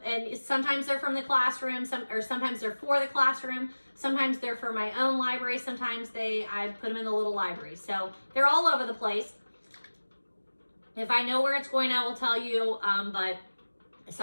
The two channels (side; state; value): both; inverted; correlation -1.00